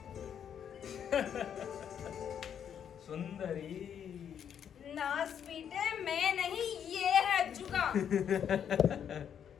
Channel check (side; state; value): right; quieter; 8.6 dB